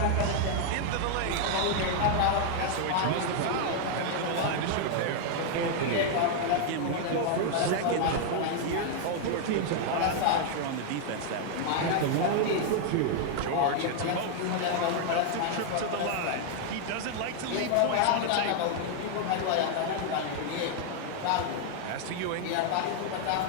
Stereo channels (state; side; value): different; both; correlation 0.00